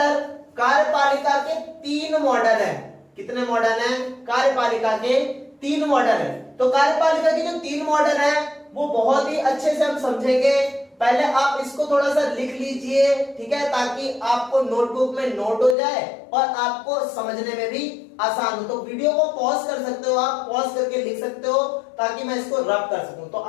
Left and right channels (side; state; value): right; drops out; at 15.8 s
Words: कार्यपालिका के 3 मॉडल हैं। कितने मॉडल हैं? कार्यपालिका के 3 मॉडल हैं। तो कार्यपालिका के जो 3 मॉडल हैं वो बहुत ही अच्छे से हम समझेंगे। पहले आप इसको थोड़ा सा लिख लीजिए, ठीक है, ताकि आपको नोटबुक में नोट हो जाए और आपको समझने में भी आसान हो। तो वीडियो को पॉज कर सकते हो, आप पॉज करके लिख सकते हो ताकि मैं इसको रब कर सकूं। तो